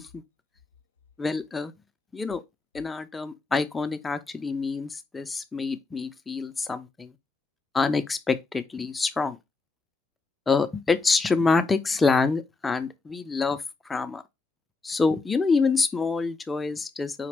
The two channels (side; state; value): right; quieter; 3.9 dB